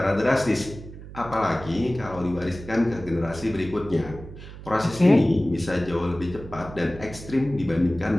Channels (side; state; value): right; noise; hum, 14 dB below the sound